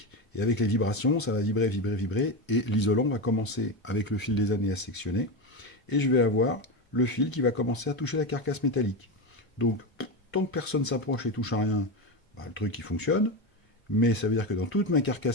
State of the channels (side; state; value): both; normal; correlation 0.16